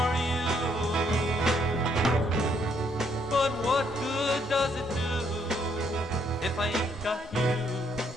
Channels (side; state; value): both; normal; correlation 0.71